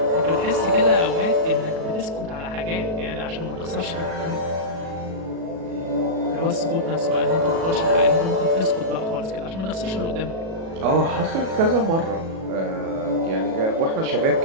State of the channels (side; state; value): left; late; 37 ms